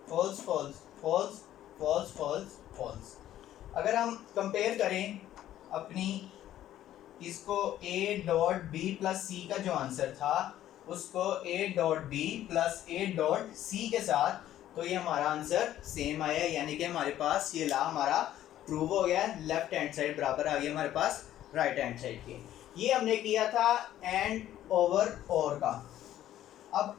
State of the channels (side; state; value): right; quieter; 12.5 dB